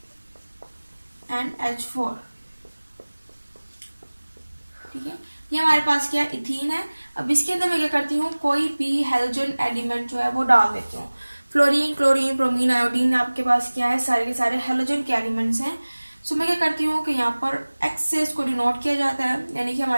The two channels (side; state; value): both; inverted; correlation -1.00